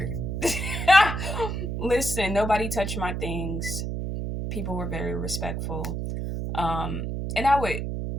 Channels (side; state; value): right; noise; hum, 3 dB below the sound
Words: Listen, nobody touched my things. People were very respectful. Um, and I would